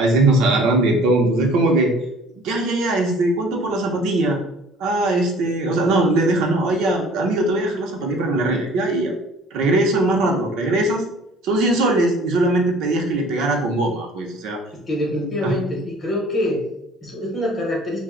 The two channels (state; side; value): normal; both; correlation 0.50